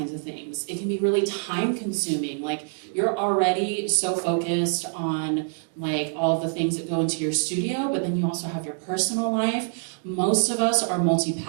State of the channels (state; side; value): silent; left; 61 dB below the other